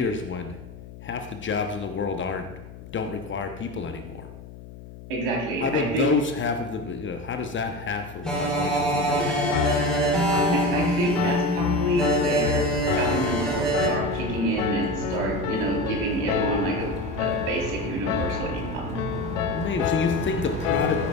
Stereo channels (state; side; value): noise; left; hum, 16 dB below the sound